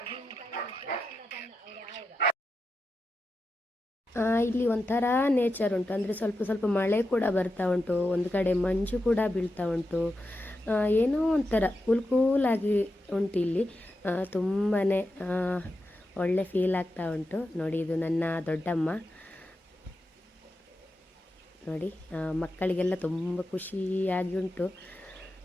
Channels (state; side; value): normal; both; correlation 0.89